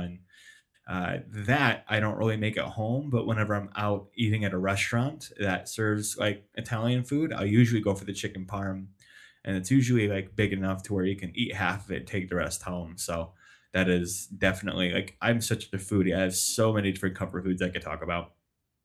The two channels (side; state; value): both; identical; correlation 1.00